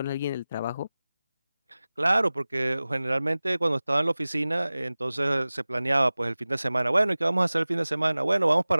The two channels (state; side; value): inverted; both; correlation -0.98